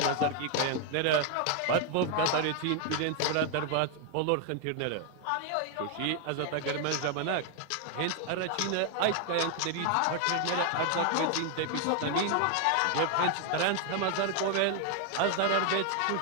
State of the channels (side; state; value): both; different; correlation 0.00